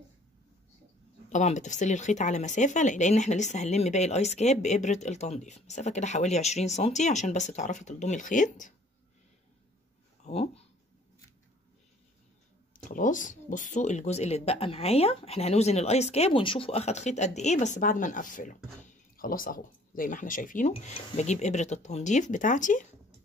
طبعا بتفصلي الخيط على مسافة لان احنا لسه هنلم باقي الايس كاب بإبرة التنظيف، مسافة كده حوالي 20 سنتي عشان بس تعرفي تلضمي الخيط اهو خلاص بصوا الجزء اللي اتبقى معايا، احنا هنوزن الايس كاب ونشوفه اخد خيط قد ايه بس بعد ما نقفله. خلاص اهو زي ما احنا شايفينه. بجيب ابرة التنظيف بتاعتي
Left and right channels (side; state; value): both; normal; correlation 0.56